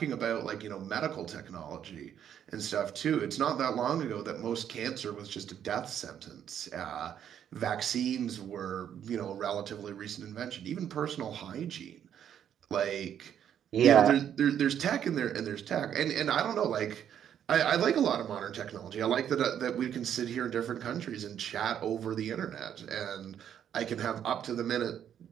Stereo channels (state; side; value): quieter; left; 9.4 dB